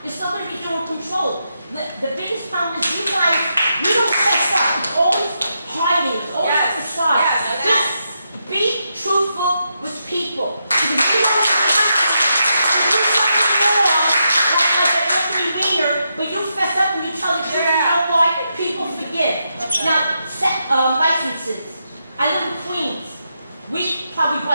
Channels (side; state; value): both; inverted; correlation -0.83